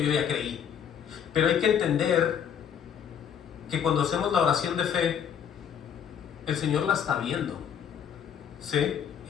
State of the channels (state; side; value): quieter; right; 8.3 dB